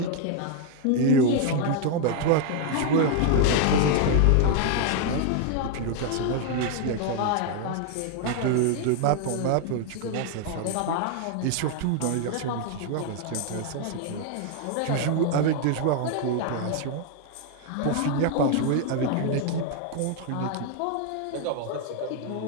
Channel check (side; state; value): both; different; correlation 0.00